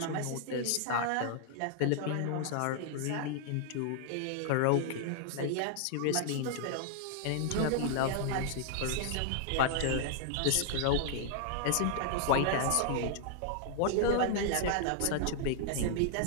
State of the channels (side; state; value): both; different; correlation -0.01